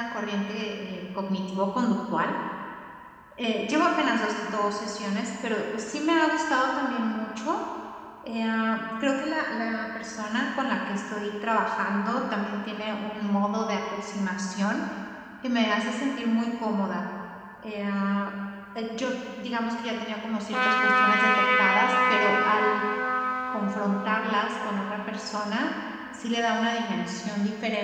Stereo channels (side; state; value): both; identical; correlation 1.00